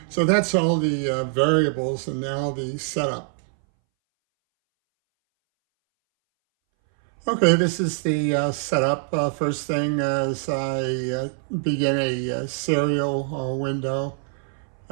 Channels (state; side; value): silent; left; 61 dB below the other